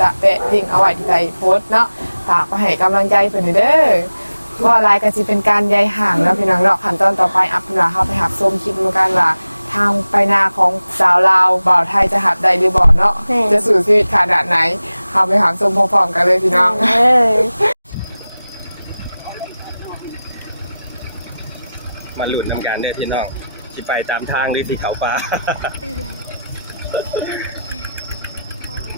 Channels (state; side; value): inverted; both; correlation -0.94